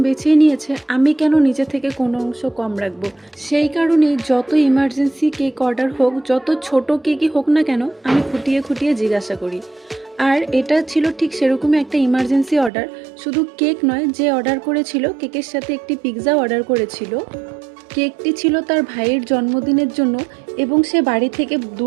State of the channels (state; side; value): drops out; left; at 12.7 s